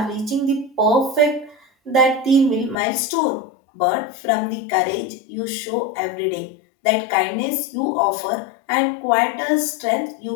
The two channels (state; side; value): drops out; right; at 2.8 s